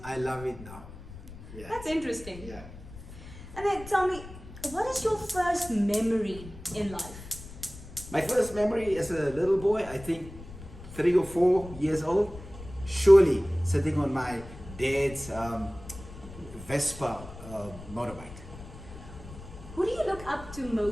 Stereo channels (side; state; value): left; noise; rumble, 15 dB below the sound